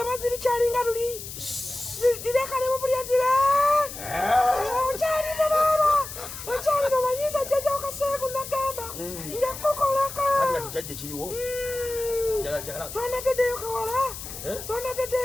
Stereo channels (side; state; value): left; noise; hiss, 10 dB below the sound